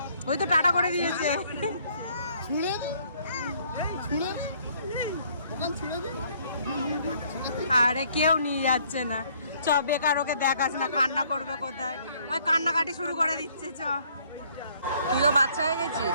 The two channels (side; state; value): both; inverted; correlation -0.63